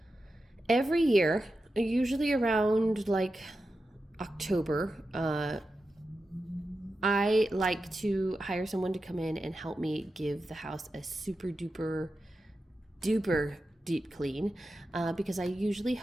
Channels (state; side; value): normal; both; correlation 0.91